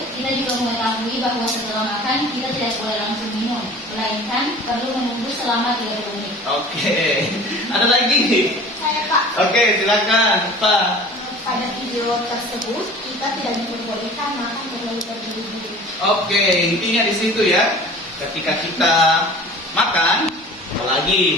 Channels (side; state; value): both; normal; correlation 0.43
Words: kita juga mengetahui bahwa setelah makan kita tidak boleh langsung minum, melainkan perlu menunggu selama 30 menit. Oke, ada lagi? Saya, Pak. Oke, silakan Pak. Pada video tersebut, kita tidak diperbolehkan makan terlalu terburu-buru. Oke, intinya di situ ya. Ketika kita makan,